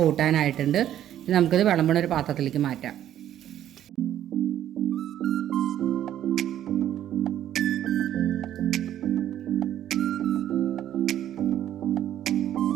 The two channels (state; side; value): quieter; left; 11.4 dB